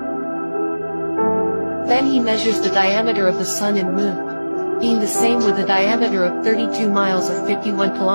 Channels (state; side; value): inverted; both; correlation -1.00